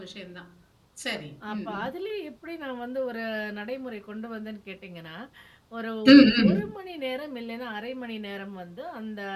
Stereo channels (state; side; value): identical; both; correlation 1.00